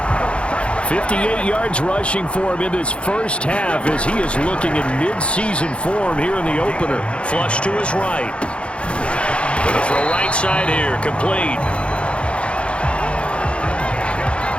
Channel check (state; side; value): late; right; 0.059 ms